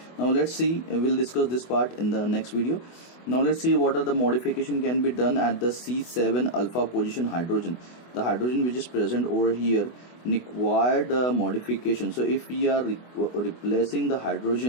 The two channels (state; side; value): late; right; 24 ms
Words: Now let's see, we'll discuss this part in the next video. Now let's see what are the modification can be done at the C7 alpha position hydrogen. The hydrogen which is present over here required modification. So if we are replacing the